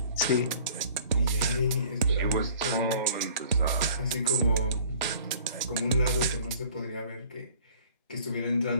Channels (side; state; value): both; inverted; correlation -0.51